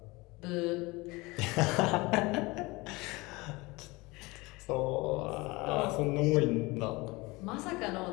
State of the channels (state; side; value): quieter; right; 23.3 dB